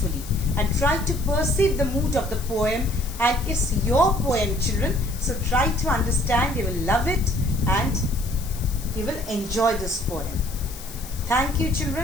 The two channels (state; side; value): noise; left; hiss, 15 dB below the sound